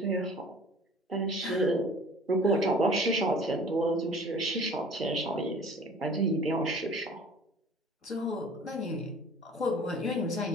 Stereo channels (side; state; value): both; normal; correlation 0.48